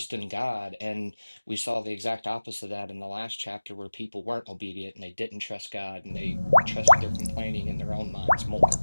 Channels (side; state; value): both; inverted; correlation -1.00